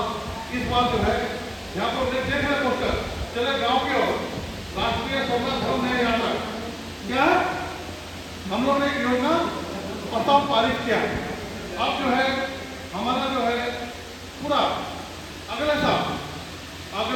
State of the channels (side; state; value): both; identical; correlation 1.00